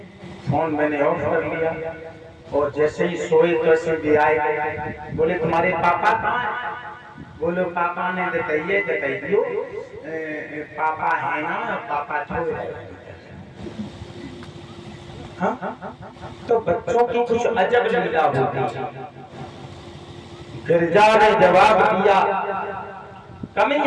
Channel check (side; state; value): both; identical; correlation 1.00